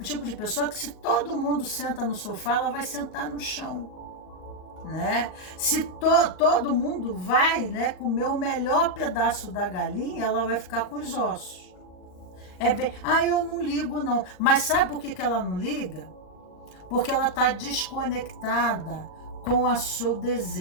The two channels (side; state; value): right; late; 39 ms